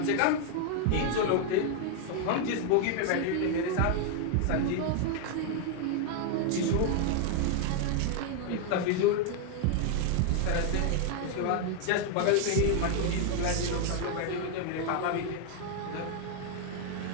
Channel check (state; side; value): different; both; correlation 0.00